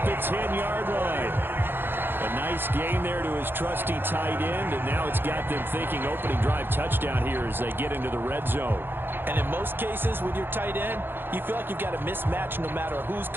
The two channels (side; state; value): left; late; 0.10 ms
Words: the 10-yard line. A nice gain there to his trusty tight end, and now it's got them thinking opening drive touchdown here as they get into the red zone. And in most cases with your tight end, you feel like you've got a mismatch no matter who's